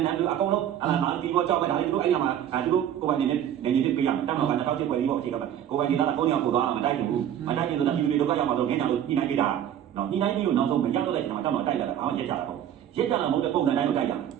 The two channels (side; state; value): left; quieter; 10.3 dB